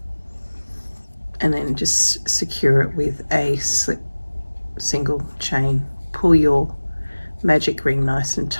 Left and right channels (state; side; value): inverted; both; correlation -1.00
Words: and then just secure it with a slip single chain. Pull your magic ring nice and